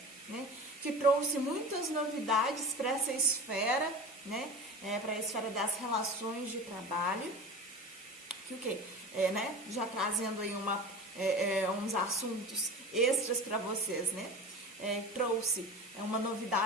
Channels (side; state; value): both; normal; correlation 0.33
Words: né? Que trouxe muitas novidades para essa esfera, né? Para a esfera das relações de trabalho, que o quê? Né? Já trazendo aí uns assuntos extras para vocês, né? Trouxe uma